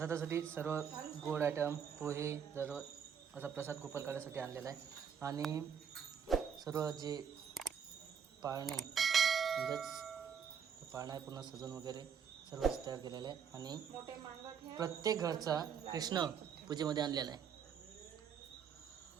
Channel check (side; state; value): left; quieter; 7.4 dB